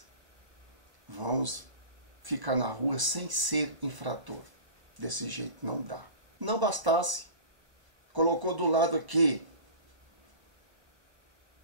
vamos ficar na rua sem ser infrator? Desse jeito não dá. Não bastasse, colocou do lado aqui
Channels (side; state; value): left; late; 1.0 ms